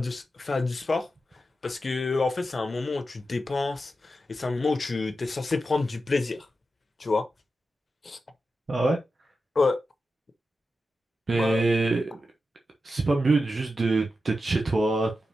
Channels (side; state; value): both; normal; correlation 0.90